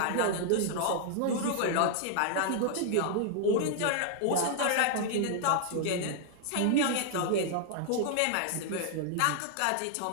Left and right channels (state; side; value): different; both; correlation 0.00